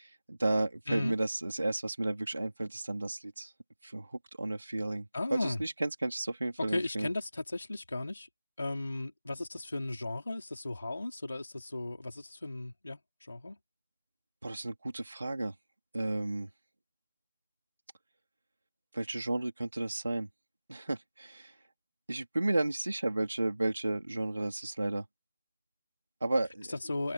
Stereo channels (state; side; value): inverted; both; correlation -0.96